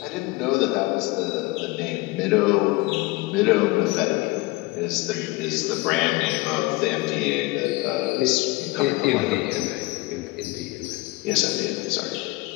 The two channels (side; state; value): right; quieter; 21.7 dB